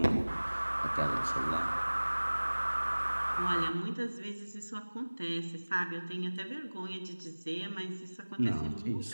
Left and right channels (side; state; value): both; inverted; correlation -1.00